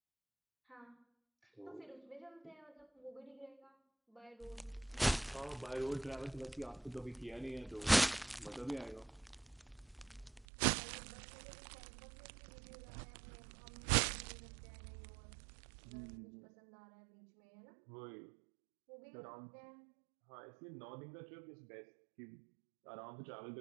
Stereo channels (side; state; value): left; drops out; at 10.5 s